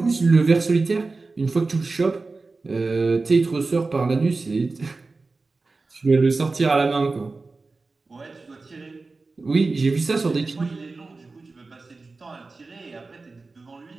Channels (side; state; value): left; quieter; 3.8 dB